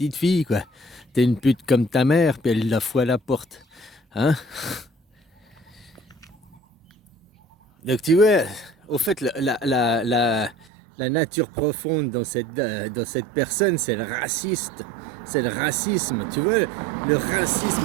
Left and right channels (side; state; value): left; drops out; at 10.7 s